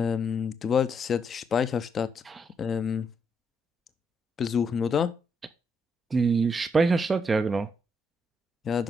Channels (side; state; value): both; normal; correlation 0.78